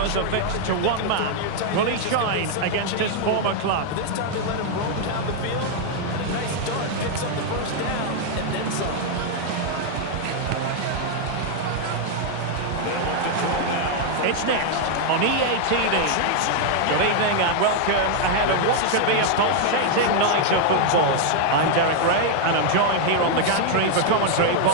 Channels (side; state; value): both; different; correlation 0.00